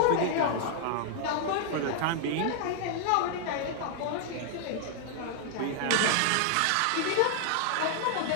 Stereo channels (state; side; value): different; both; correlation 0.00